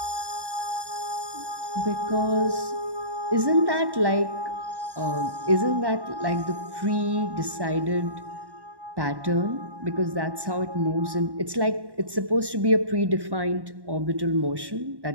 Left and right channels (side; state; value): left; late; 1.1 ms